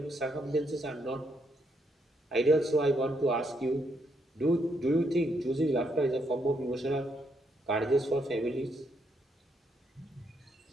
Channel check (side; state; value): both; normal; correlation 0.76